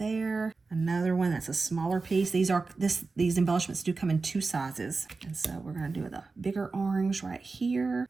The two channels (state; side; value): quieter; left; 4.0 dB